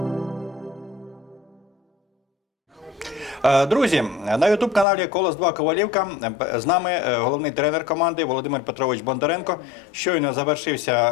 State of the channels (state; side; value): drops out; right; at 4.9 s